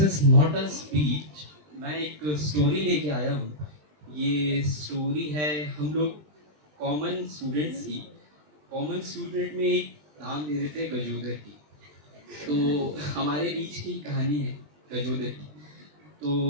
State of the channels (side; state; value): left; late; 20 ms